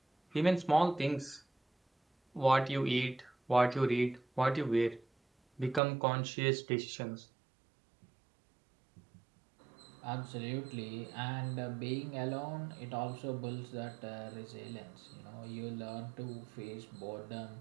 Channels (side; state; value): left; drops out; at 5.8 s